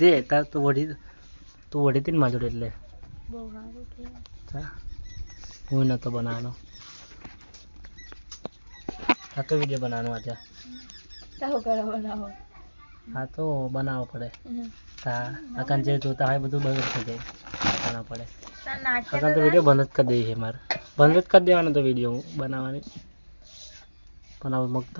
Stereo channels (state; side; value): inverted; both; correlation -1.00